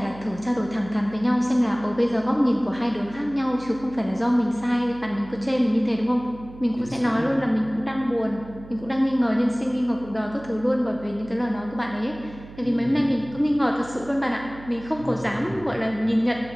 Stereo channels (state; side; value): noise; right; hum, 17 dB below the sound